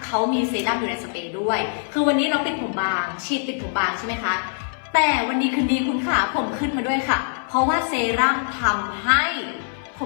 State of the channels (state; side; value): silent; right; 58 dB below the other